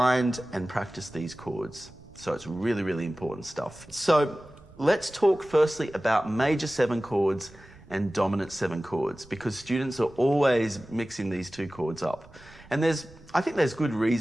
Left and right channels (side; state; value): right; noise; rumble, 24 dB below the sound